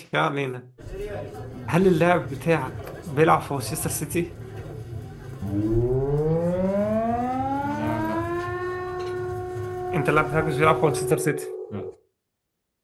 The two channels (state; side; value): identical; both; correlation 1.00